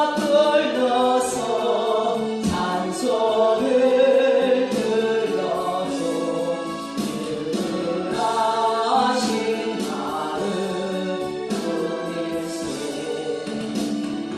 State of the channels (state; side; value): identical; both; correlation 1.00